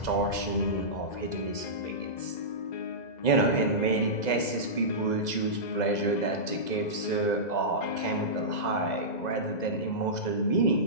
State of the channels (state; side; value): late; right; 2.0 ms